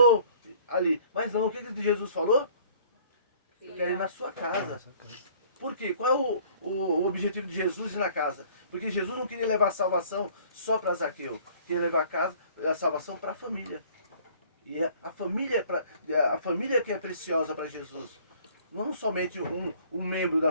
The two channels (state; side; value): inverted; both; correlation -0.55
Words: ali. Mas não, o que Jesus falou? Eu quero ir na sua casa. Por quê? Qual é o objetivo de Jesus ir na casa? Porque Jesus não queria levar a salvação só para Zaqueu. Queria levar a salvação para a família. E a família que é preciosa para Jesus. Não somente um membro